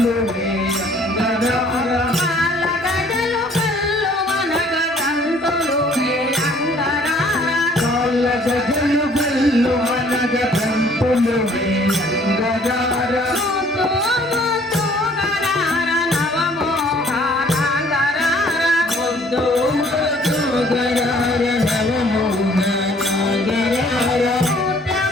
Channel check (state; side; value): normal; both; correlation 0.58